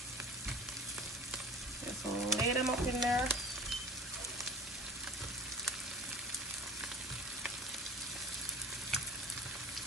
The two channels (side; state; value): both; normal; correlation 0.39